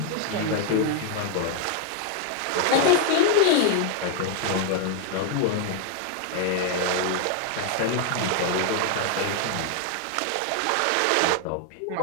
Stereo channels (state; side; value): different; both; correlation 0.00